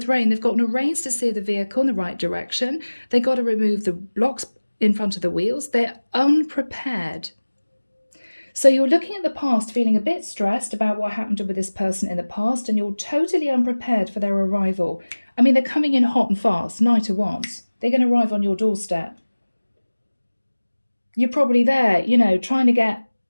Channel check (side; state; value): both; inverted; correlation -1.00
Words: rain. They've got no reins to steer the vehicle in the right direction. They've got to remove the blocks in front of the wheels. They're unprepared. So you're looking at the past, feeling a bit stressed about what happened with this person in the past, and you're totally unprepared for their arrival. I mean, they're coming in hot and fast, night at once. They're going to arrive on your doorstep. You're probably there, trying to get